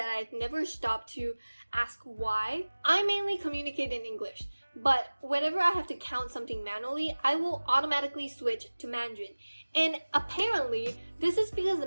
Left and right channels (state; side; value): inverted; both; correlation -1.00